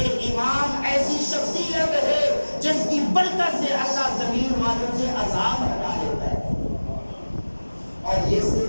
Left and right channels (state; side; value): inverted; both; correlation -1.00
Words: امام ایسی شخصیت ہے جس کی برکت سے اللہ زمین والوں سے عذاب ہٹا لیتا ہے۔ اور یہ